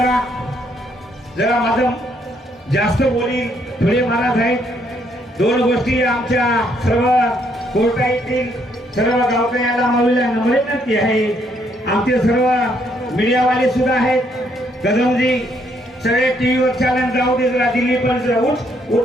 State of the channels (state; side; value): normal; both; correlation 0.71